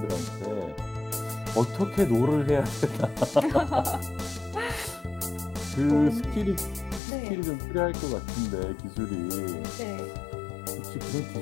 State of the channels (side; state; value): right; drops out; at 7.0 s